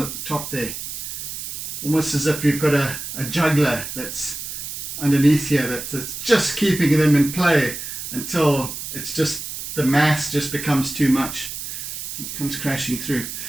at the top there. Almost as if you've got a juggler that's underneath here that's just keeping them in play until it's just, the mass just becomes too much. It comes crashing through.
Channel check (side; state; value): right; noise; hiss, 7 dB below the sound